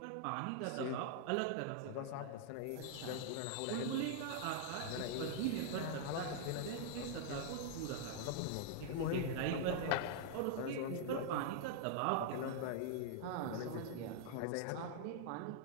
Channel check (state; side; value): different; both; correlation -0.01